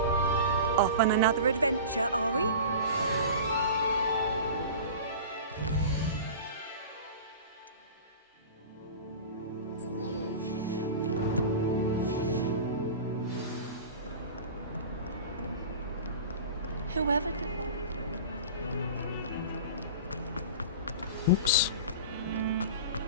Off on another adventure, are we? Whoever Oops.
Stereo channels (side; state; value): both; inverted; correlation -0.34